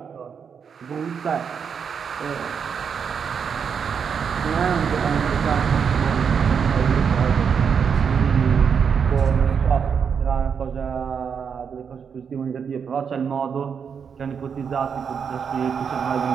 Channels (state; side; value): quieter; left; 6.7 dB